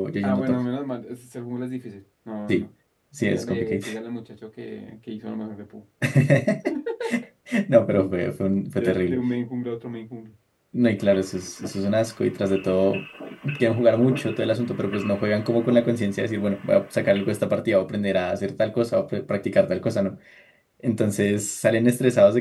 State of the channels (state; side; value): identical; both; correlation 1.00